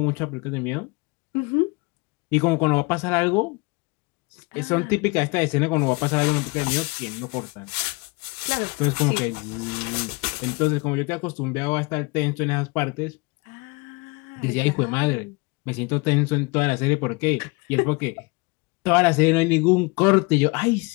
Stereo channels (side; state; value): right; quieter; 27.4 dB